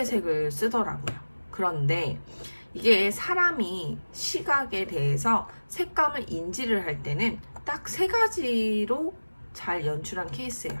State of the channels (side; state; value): both; inverted; correlation -1.00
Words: 색을 쓰더라고요. 그런데 이게 사람이 시각에 대해서 색감을 인지를 할 때는 딱 3가지로 잘 연출한 케이스예요.